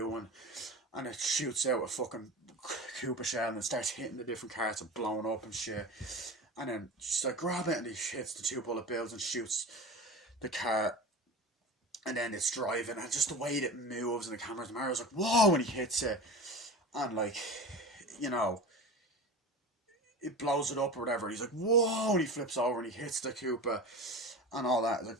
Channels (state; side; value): normal; both; correlation 0.31